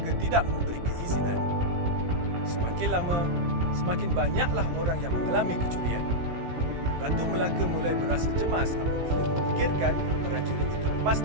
tidak memberi keizinan. Semakin lama, semakin banyaklah orang yang mengalami kecurian. Ratu Melaka mulai berasa cemas apabila memikirkan prajurit itu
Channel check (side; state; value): left; late; 17 ms